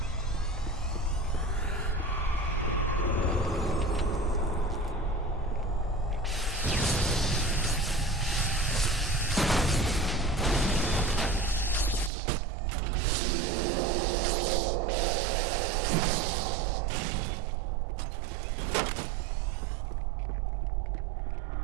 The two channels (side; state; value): left; drops out; at 12.1 s